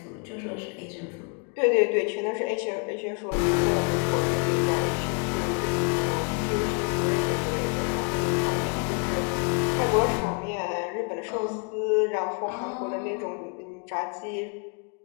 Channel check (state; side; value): quieter; right; 37.1 dB